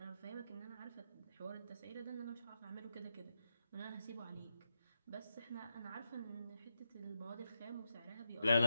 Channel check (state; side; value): inverted; both; correlation -0.85